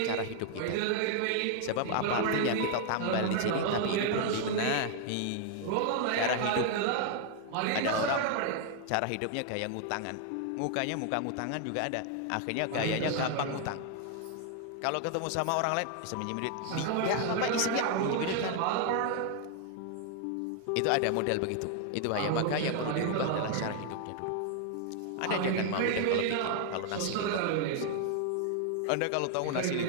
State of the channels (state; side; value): different; both; correlation 0.00